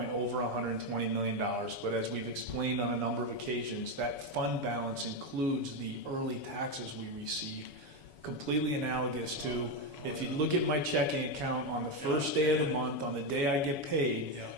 over $120 million, but as we've explained on a number of occasions, that fund balance includes the early taxes we receive, completely analogous to if you look at my checking account on the first day of the month, on the day I get paid,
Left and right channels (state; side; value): late; right; 7.1 ms